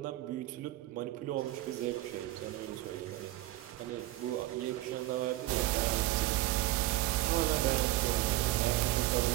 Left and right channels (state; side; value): quieter; left; 16.5 dB